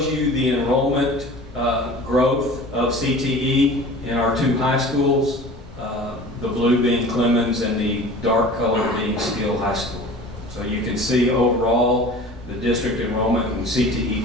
you the enrollment growth of CTE in our 2 high schools, the blue being Clemens and the dark color being Steele High School. So you can see overall the district enrollment in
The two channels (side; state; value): both; normal; correlation 0.41